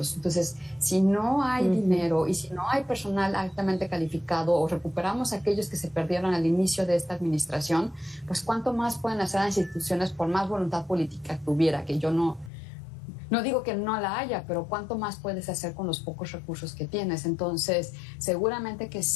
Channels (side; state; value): right; drops out; at 12.5 s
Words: Entonces, si no hay dinero y si no hay personal altamente calificado o recuperamos aquellos que se perdieron al inicio de esta administración, pues cuánto más pueden hacer las instituciones por más voluntad política que hubiera, que yo no digo que no la haya, pero ¿cuánto más puedes hacer con los pocos recursos que tienes? Entonces, seguramente que